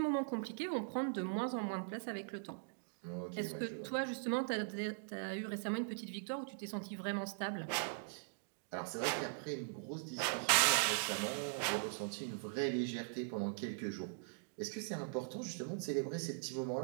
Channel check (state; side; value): silent; left; digital silence